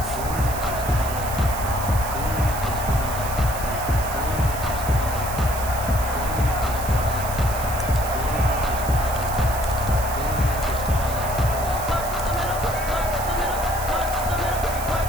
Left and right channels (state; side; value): noise; right; hiss, 10 dB below the sound